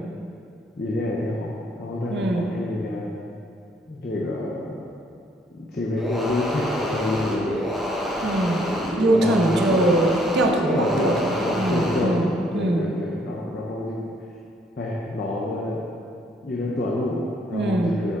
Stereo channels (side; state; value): both; normal; correlation 0.66